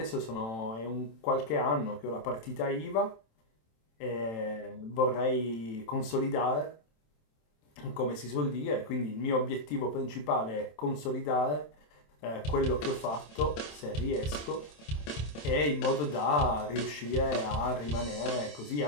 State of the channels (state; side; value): late; right; 27 ms